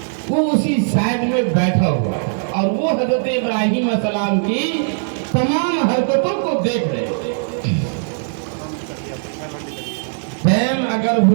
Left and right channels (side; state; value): left; silent; 57 dB below the other